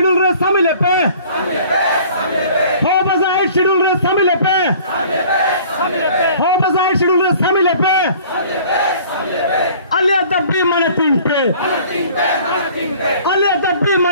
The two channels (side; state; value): both; inverted; correlation -0.50